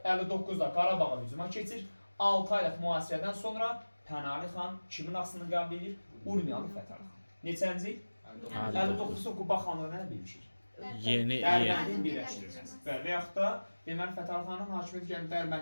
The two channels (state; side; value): inverted; both; correlation -1.00